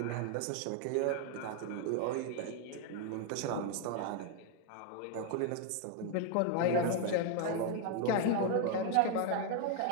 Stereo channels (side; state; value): both; different; correlation 0.00